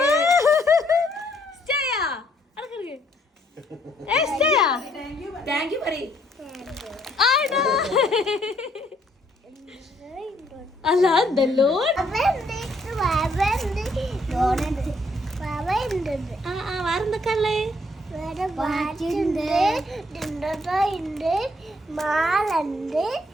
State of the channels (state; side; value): normal; both; correlation 0.68